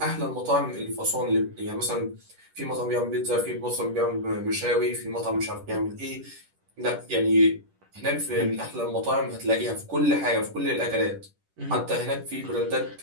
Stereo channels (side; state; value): left; late; 10 ms